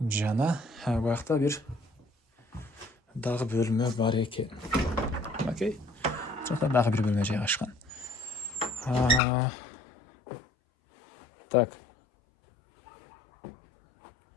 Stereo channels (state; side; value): drops out; right; at 9.2 s